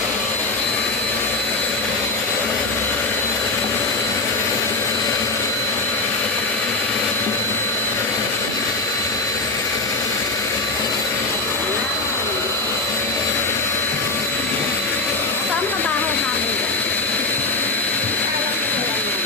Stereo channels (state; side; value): quieter; right; 3.3 dB